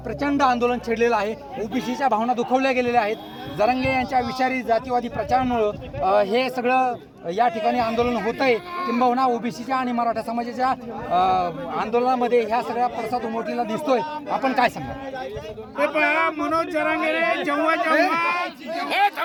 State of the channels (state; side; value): identical; both; correlation 1.00